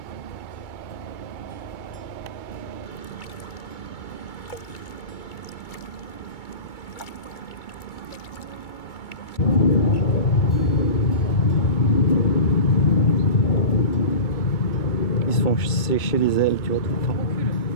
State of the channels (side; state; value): right; late; 2.2 ms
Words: Ils se font sécher les ailes, tu vois, tout le temps.